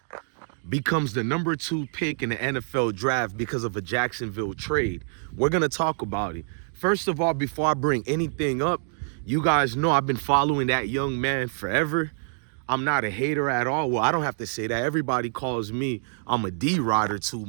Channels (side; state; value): left; silent; digital silence